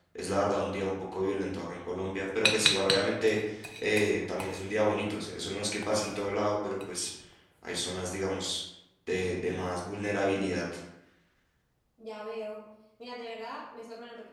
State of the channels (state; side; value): identical; both; correlation 1.00